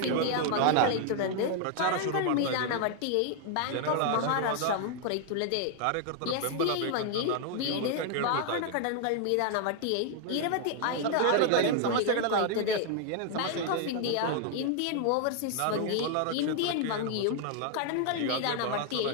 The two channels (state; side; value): different; both; correlation 0.00